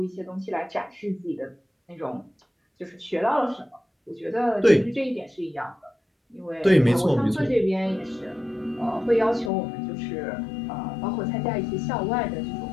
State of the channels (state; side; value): drops out; right; at 9.5 s